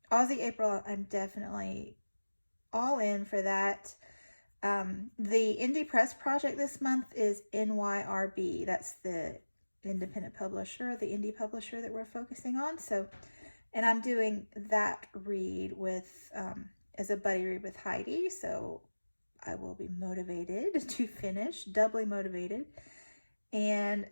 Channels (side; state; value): both; inverted; correlation -1.00